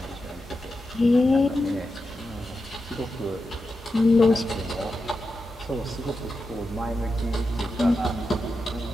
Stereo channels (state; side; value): normal; both; correlation 0.89